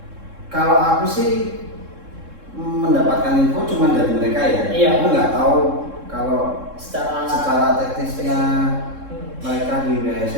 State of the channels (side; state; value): left; late; 3.7 ms